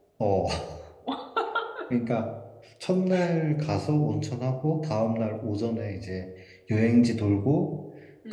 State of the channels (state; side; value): identical; both; correlation 1.00